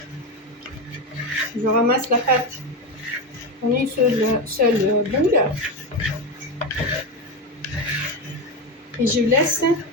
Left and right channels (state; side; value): normal; both; correlation 0.16